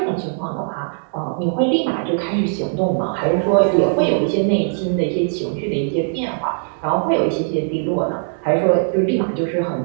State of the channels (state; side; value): silent; left; digital silence